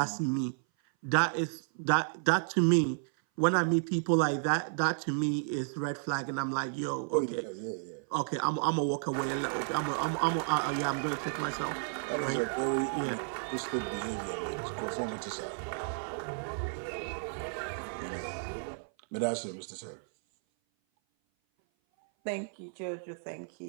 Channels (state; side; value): silent; left; 56 dB below the other